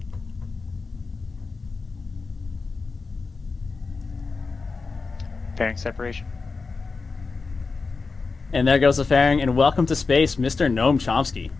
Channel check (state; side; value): quieter; right; 4.4 dB